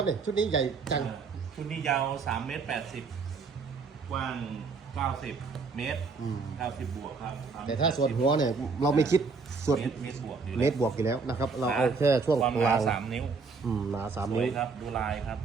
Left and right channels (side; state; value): left; quieter; 4.7 dB